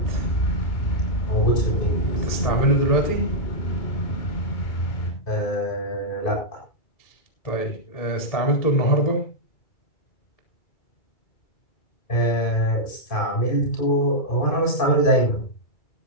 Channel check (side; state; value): right; late; 2.3 ms